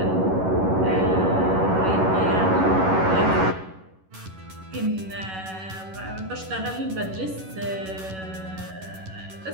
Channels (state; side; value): late; left; 11 ms